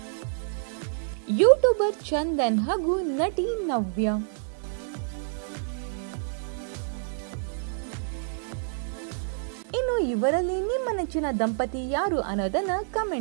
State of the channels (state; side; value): silent; left; digital silence